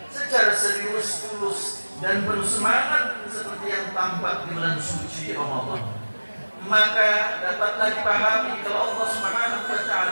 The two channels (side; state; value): both; inverted; correlation -1.00